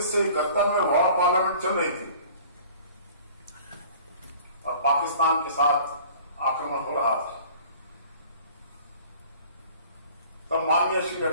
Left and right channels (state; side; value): inverted; both; correlation -0.48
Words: में वॉर पार्लियामेंट चल रही थी और पाकिस्तान के साथ आक्रमण हो रहा था, तब माननीय श्री